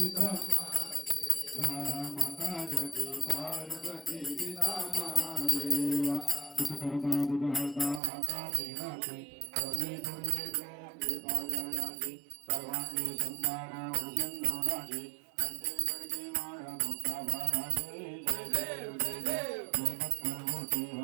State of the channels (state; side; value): drops out; left; at 8.0 s